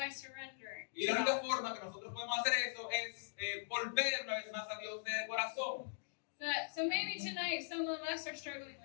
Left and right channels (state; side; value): silent; right; digital silence